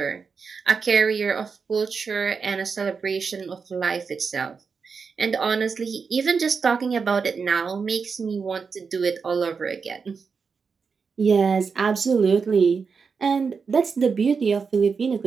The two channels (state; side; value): quieter; left; 5.4 dB